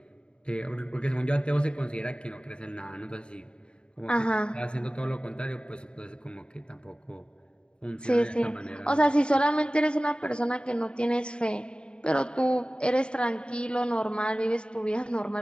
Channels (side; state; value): right; late; 0.052 ms